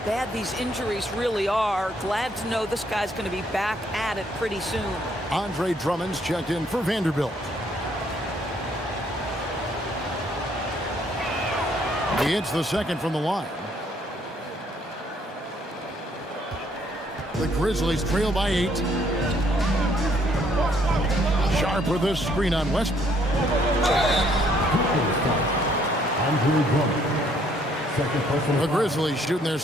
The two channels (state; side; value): normal; both; correlation 0.66